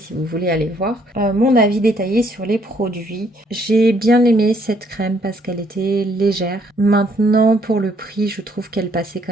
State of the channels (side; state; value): both; normal; correlation 0.67